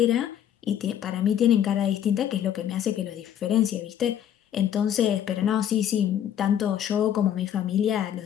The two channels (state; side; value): quieter; right; 10.1 dB